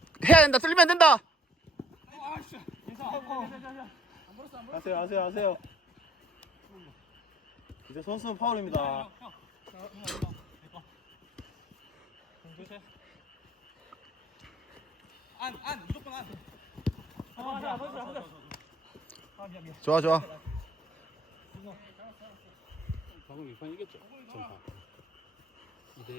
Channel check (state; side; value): normal; both; correlation 0.60